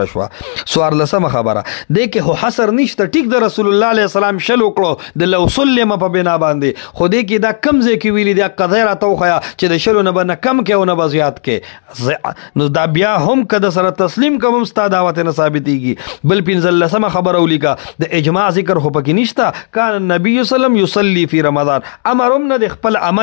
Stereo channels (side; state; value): right; silent; digital silence